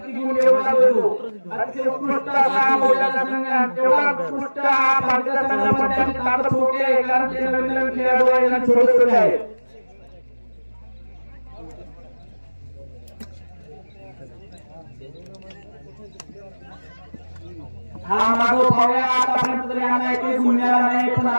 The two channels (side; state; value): both; inverted; correlation -1.00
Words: किती गुण घेऊन जातो अतिशय उत्कृष्ट असा बोलला संघ तेवढा उत्कृष्ट हा भारतीय संघामध्ये त्यांची ताकद मोठी आहे कारण ते नवीन नवीन खेळाडू आहेत आणि छोटे छोटे आहेत हा माधव पाहूया आतापर्यंत तरी आम्हाला एकही गुण मिळाला नाही पण